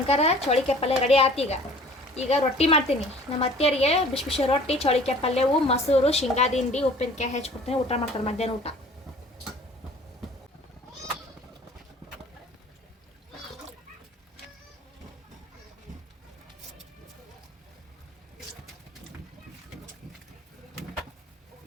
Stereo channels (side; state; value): both; normal; correlation 0.49